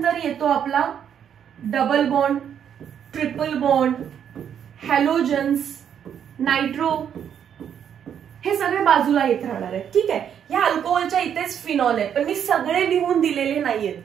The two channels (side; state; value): left; quieter; 8.7 dB